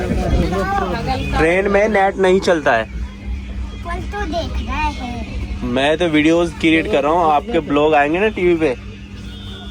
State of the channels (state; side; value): identical; both; correlation 1.00